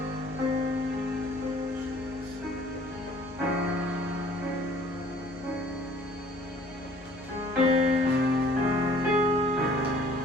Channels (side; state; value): both; normal; correlation 0.55